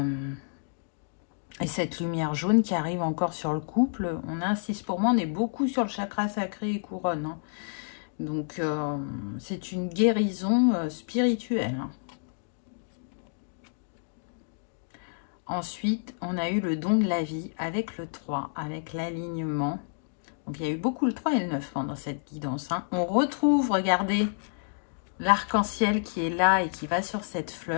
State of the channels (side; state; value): right; silent; digital silence